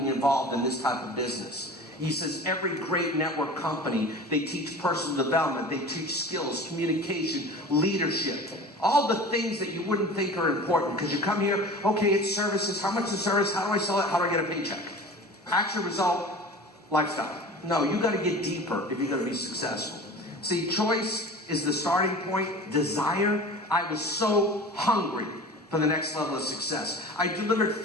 involved in this type of business. He says every great network company, they teach personal development, they teach skills, communication, leadership, all the things that you wouldn't think are important. Because you come here, okay, it's services. How much is service? How do I sell it? How do I get a paycheck? Action, result, lifestyle. No, you got to get deeper if you're going to be successful. See, choice is the starting point. Desire. I was so hungry for the next level of success. I delivered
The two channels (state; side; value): normal; both; correlation 0.37